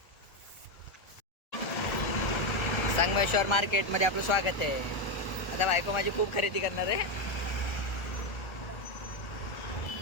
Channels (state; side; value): late; right; 1.4 ms